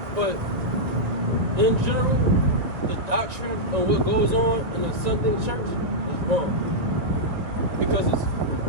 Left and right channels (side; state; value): left; late; 1.6 ms